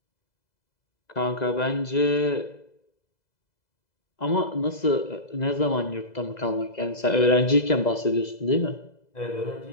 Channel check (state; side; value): late; right; 2.0 ms